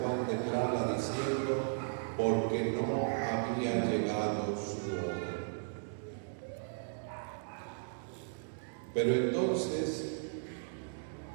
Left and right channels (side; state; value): left; silent; digital silence